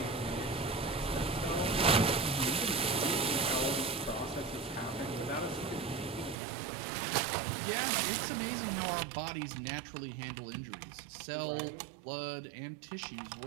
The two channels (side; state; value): left; drops out; at 6.4 s